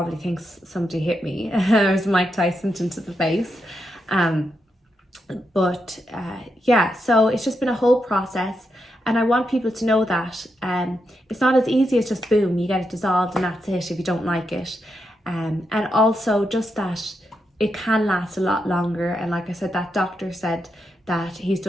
thinks somebody hit me. There's Mike Tyson into the face. Yeah, so it's just been a whole process, and I want people to know that it's not as easy as just boom, you get it dissolved and that's it if you don't like it. And also just that it can last a lot longer. And like I said, that doctor said that he's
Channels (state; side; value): normal; both; correlation 0.84